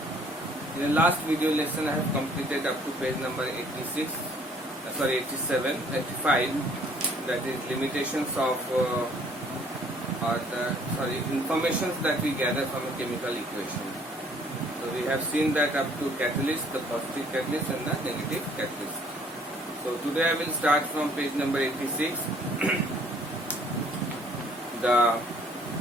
In the last video lesson I have completed up to page number 86, 85, that is limitations of informations that we gather from a chemical equation. So we have seen that up to catalyst, the positive catalyst and the negative catalyst. So today I will start from page number 86. The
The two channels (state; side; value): normal; both; correlation 0.60